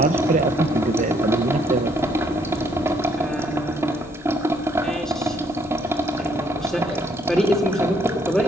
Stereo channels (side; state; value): both; normal; correlation 0.68